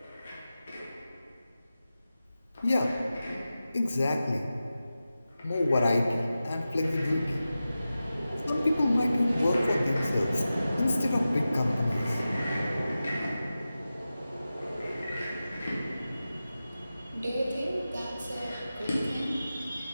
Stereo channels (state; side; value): inverted; both; correlation -0.94